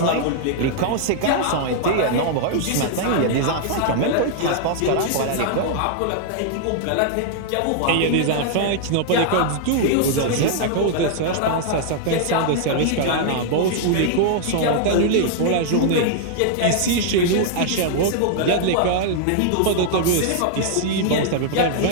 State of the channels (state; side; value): different; both; correlation -0.01